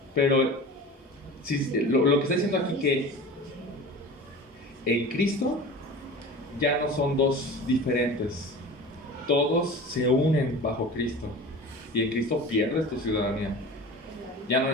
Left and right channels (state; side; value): normal; both; correlation 0.36